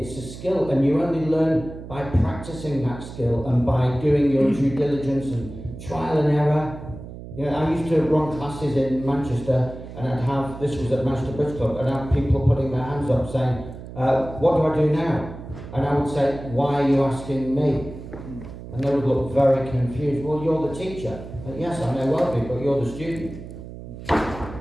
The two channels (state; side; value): noise; right; hum, 13 dB below the sound